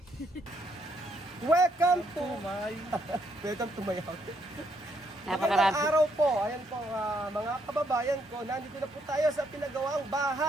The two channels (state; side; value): normal; both; correlation 0.73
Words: Welcome to my welcome to my house. Napakagandang araw po. Ayan po mga kababayan ko, nandito na po tayo sa pinagawang